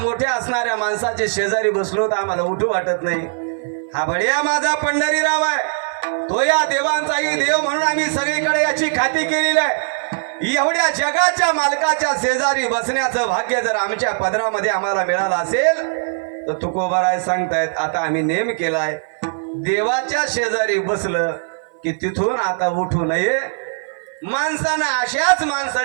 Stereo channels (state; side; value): silent; left; 56 dB below the other